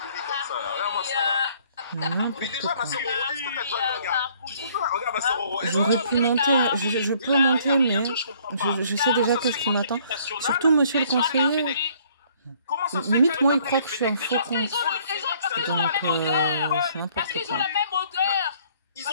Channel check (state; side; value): inverted; both; correlation -0.60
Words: Mais déjà, ma sœur, est-ce que t'as déjà regardé? Regarde, ma sœur Roro. J'aurais pu monter, je peux monter, mais je sais déjà qu'est-ce qui m'attend. Surtout, monsieur le conseiller. Limite, moi, il croit que je suis un faux con. Donc, c'est n'importe quoi. Ils